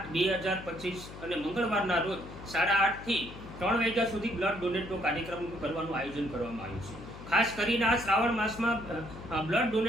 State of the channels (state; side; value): noise; left; hum, 14 dB below the sound